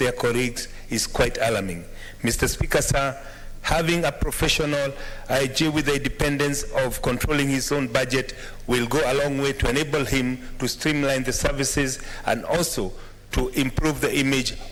colleagues is quite alarming. Mr. Speaker, sir, having a professional IG with the independence of controlling his own budget will go a long way to enable him to streamline the services and also to improve the image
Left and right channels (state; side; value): identical; both; correlation 1.00